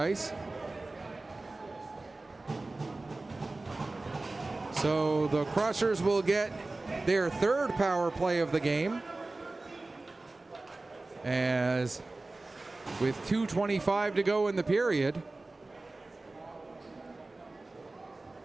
So the Crushers will get their third power play of the game, as with 2:25 to go in the period.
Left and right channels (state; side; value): quieter; left; 3.1 dB